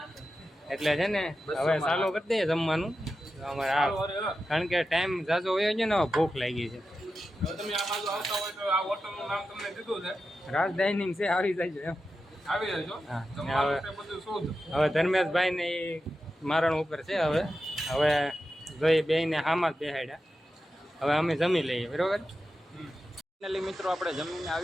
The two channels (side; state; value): both; normal; correlation 0.91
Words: એટલે છે ને હવે ચાલુ કરી દઈએ જમવાનું અમારે. કારણ કે ટાઈમ ઝાઝો હોય છે ને, હવે ભૂખ લાગી છે. તમે આ બાજુ આવતા હોય તો આ હોટલનું નામ તમને દીધું છે, રાજ ડાઇનિંગ છે, આવી જાય એમ. આવી જજો. હા જમવાનું તે બધું શોધ. હવે ધર્મેશભાઈ ને મારણ ઉપર છે. હવે જોઈ બેને હામાં જ બેહાડ્યા. હવે અમે જમી લઈએ, બરોબર. ફાઇનલી મિત્રો આપણે જમીને